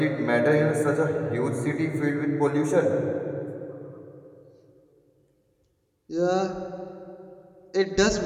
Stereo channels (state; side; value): identical; both; correlation 1.00